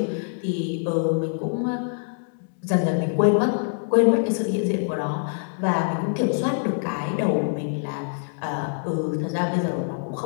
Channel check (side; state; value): right; silent; digital silence